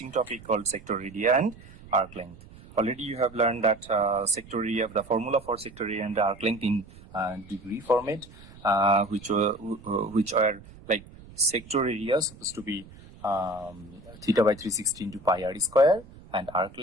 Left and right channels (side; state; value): right; noise; rumble, 20 dB below the sound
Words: topic called sector area and arc length. Already you have learned that sector area, the formula for sector area and arc length in degree format, which are like sector area supposed to be theta by 360 into pi r square, and arc